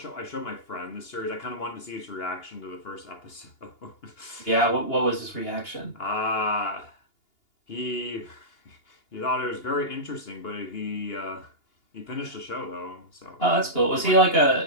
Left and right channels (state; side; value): late; right; 2.8 ms